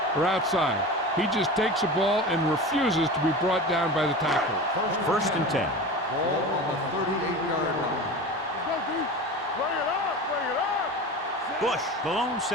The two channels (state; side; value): normal; both; correlation 0.31